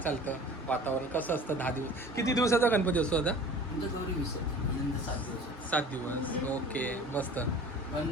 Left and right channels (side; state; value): both; normal; correlation 0.43